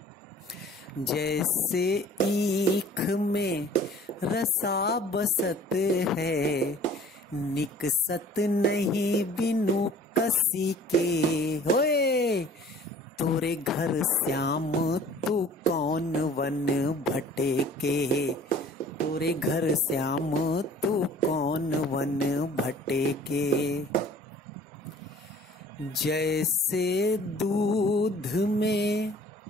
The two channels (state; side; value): normal; both; correlation 0.49